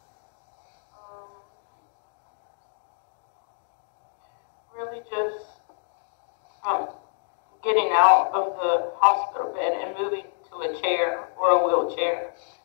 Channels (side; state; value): right; silent; digital silence